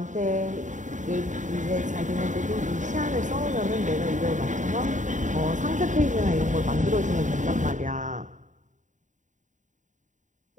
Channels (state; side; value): late; left; 0.36 ms